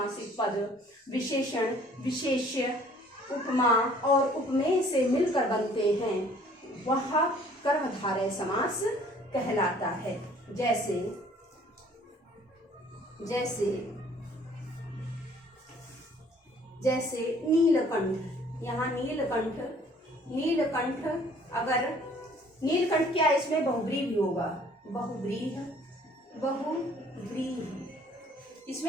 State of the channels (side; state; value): both; normal; correlation 0.56